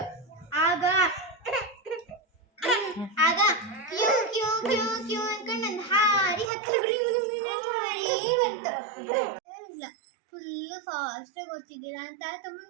ಆಗ ಆಗ ಕ್ಯೂ ಕ್ಯೂ ಕ್ಯೂ ಕ್ಯೂ ಅನ್ಕೊಂಡು ನನ್ನ ಹಾರಿ ಹತ್ತಿ ಬಂತು. ಇಲ್ಲ ಫುಲ್ಲು ಫಾಸ್ಟಾಗಿ ಓದ್ತಿದ್ದೀರಾ ಅಂತ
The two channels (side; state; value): left; drops out; at 6.5 s